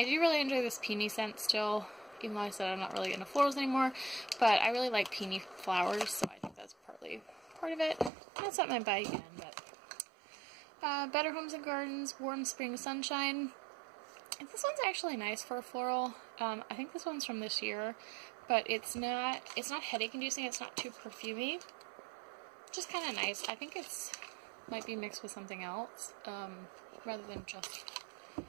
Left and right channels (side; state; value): left; drops out; at 8.1 s